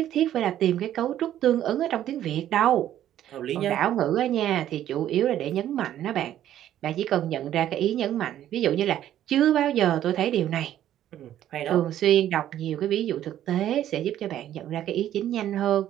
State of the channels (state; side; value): quieter; left; 11.8 dB